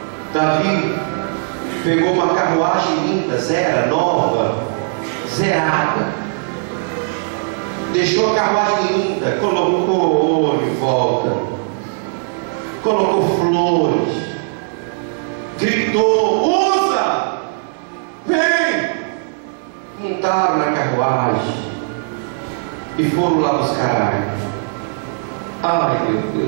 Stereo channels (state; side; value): silent; left; digital silence